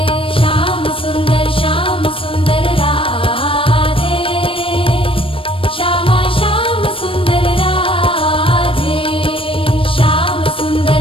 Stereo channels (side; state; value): right; late; 0.26 ms